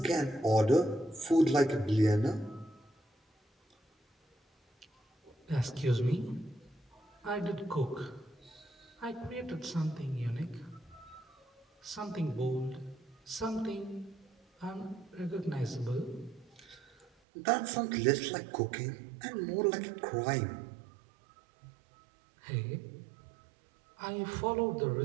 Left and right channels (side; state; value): left; drops out; at 17.1 s